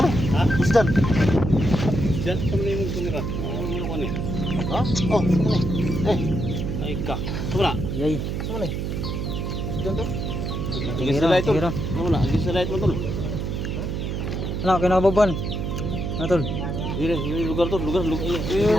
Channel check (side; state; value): right; noise; hum, 2 dB below the sound